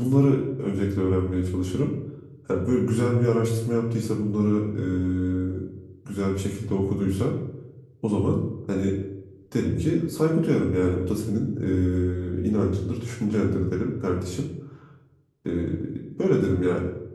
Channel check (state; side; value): identical; both; correlation 1.00